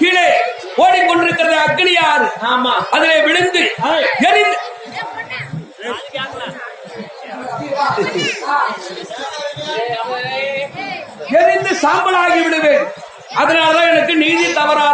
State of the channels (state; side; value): identical; both; correlation 1.00